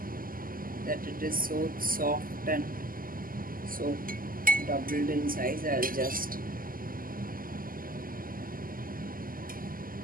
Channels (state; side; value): late; left; 0.41 ms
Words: that it is so soft and so doubled in size. I'll just,